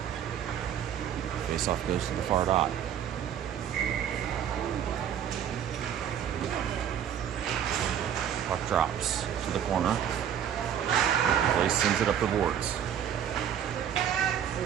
Face-off goes to the far dot. Puck drops to the corner. Blaze sends it up the boards.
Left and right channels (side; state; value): left; quieter; 9.3 dB